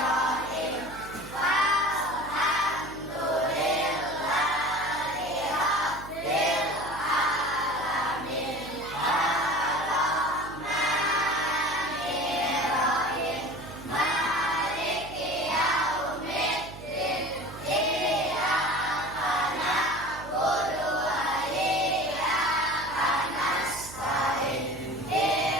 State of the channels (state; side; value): noise; right; hum, 15 dB below the sound